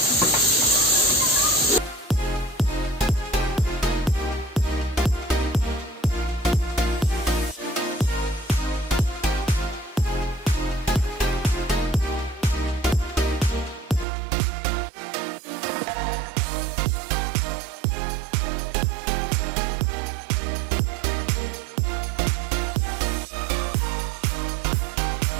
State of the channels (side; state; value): left; drops out; at 14.1 s